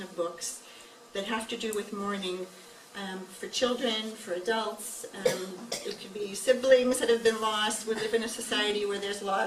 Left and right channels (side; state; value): both; identical; correlation 1.00